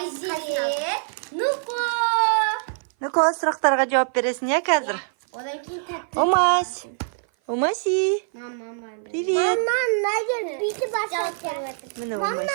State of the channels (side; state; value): left; silent; 57 dB below the other